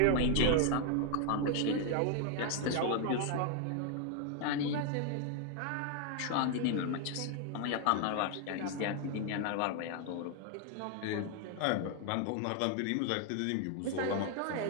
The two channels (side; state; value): both; different; correlation 0.00